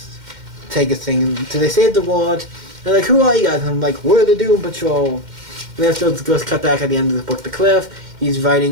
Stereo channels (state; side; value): late; left; 2.1 ms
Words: take his thing. So they save the world. They're like, who are you guys? And I'm like, we're the Doom Patrol. And then it goes cut back at the end of the book to Cliff. he's